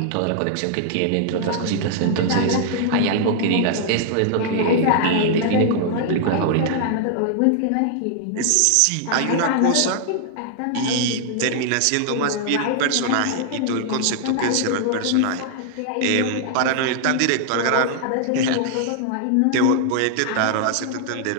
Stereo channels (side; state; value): both; different; correlation 0.00